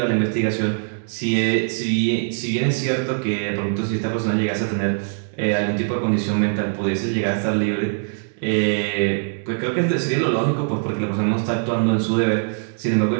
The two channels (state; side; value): silent; left; 64 dB below the other